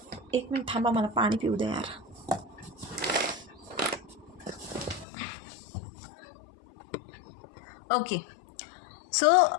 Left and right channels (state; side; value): drops out; right; at 5.1 s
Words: 1 मिनट थांबा, मला पाणी पिऊ दे यार. ओके, सो